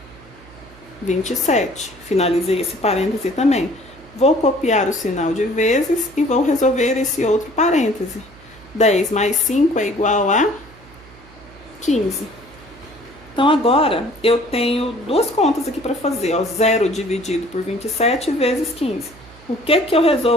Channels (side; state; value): right; noise; hum, 23 dB below the sound